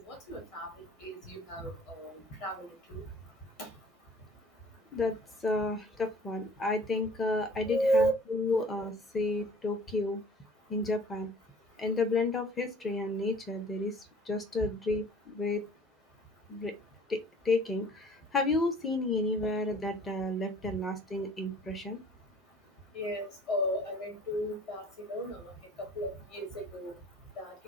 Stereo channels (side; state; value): both; normal; correlation 0.51